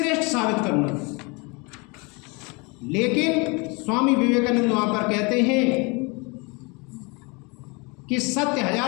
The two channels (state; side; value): quieter; right; 29.4 dB